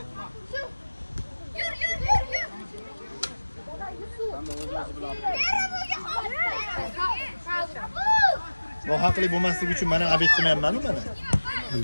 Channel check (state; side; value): inverted; both; correlation -1.00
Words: Yur. Nohaqlik bo'lmasligi uchun mana abet qilmayapman-ku mana.